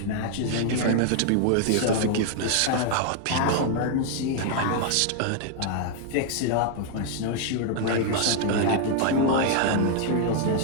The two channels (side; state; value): both; different; correlation 0.00